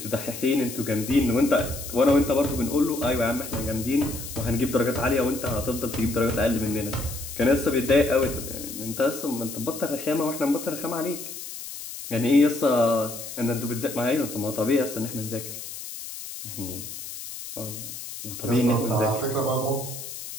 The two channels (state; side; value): noise; left; hiss, 10 dB below the sound